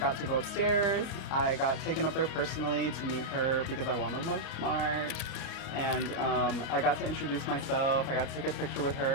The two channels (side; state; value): right; late; 32 ms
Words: to go upstairs. I got taken up there personally to meet her because I wanted to look smart. And I got to introduce myself. I got to take a picture with